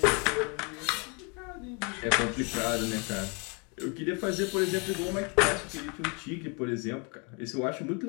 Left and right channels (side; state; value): right; quieter; 33.4 dB